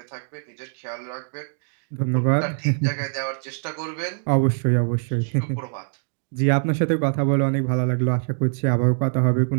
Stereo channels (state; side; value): silent; left; digital silence